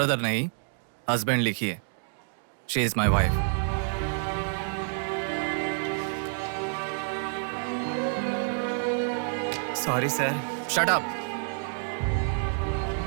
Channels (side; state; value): left; silent; 59 dB below the other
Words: नहीं, हस्बैंड लिखिए। She is my wife. Sorry sir. Shut up.